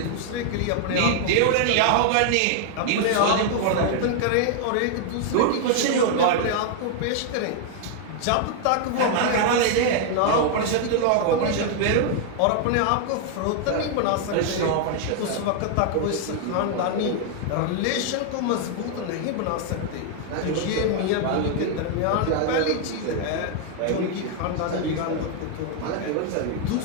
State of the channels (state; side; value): different; both; correlation 0.00